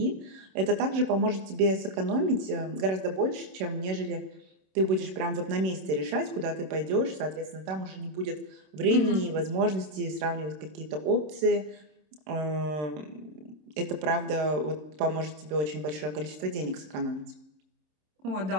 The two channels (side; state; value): left; late; 26 ms